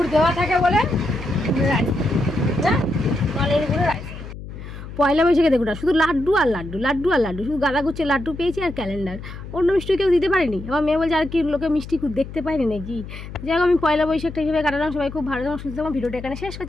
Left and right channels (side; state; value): left; noise; hum, 12 dB below the sound